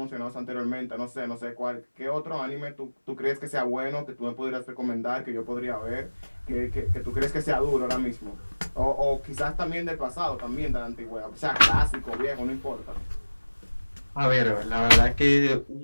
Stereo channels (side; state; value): both; inverted; correlation -1.00